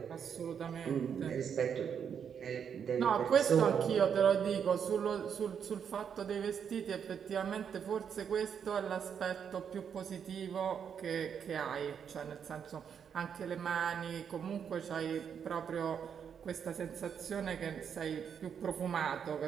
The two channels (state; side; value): quieter; left; 7.6 dB